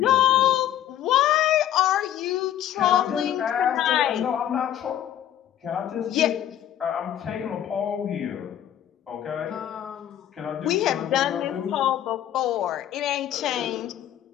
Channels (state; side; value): quieter; right; 11.2 dB